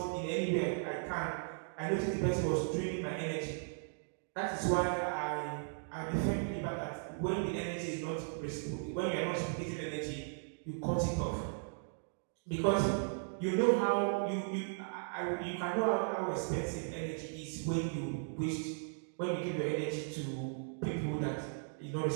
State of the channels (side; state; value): left; silent; digital silence